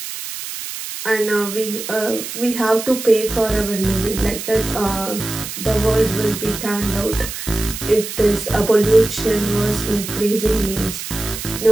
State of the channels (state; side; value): noise; right; hiss, 8 dB below the sound